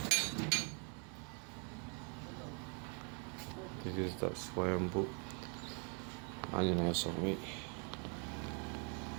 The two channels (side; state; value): left; quieter; 37.9 dB